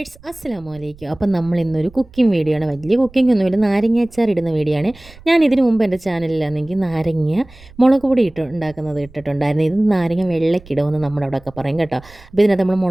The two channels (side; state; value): right; noise; rumble, 23 dB below the sound